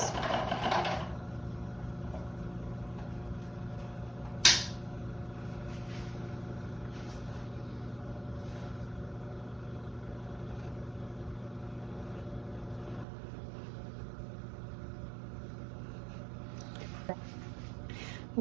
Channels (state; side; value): drops out; left; at 13.1 s